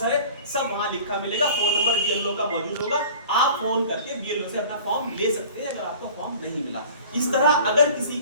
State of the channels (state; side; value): inverted; both; correlation -0.43